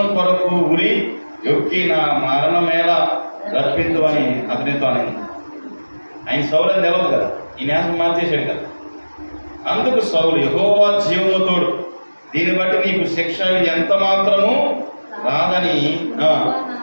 కొరకు ఉరి యొక్కి నా మరణమేలా రప్పించు అని అతనితో అని. ఆయన సౌలు అని తెలవదు కదా, ఈ న్యాసం మార్చేశాడు కదా. అందుకు సౌలు, యెహోవా జీవముతోడు, దీన్ని బట్టి నీకు శిక్ష ఎంత మాత్రము రాదని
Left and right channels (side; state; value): both; inverted; correlation -1.00